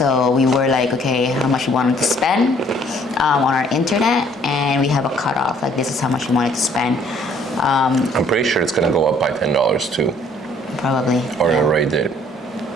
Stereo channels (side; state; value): both; normal; correlation 0.60